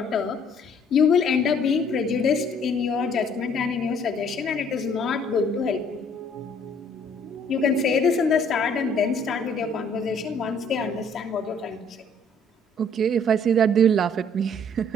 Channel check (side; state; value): both; normal; correlation 0.60